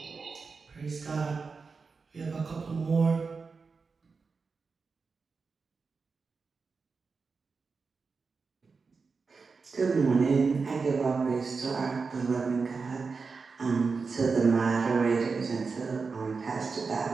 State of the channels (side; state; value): left; quieter; 4.7 dB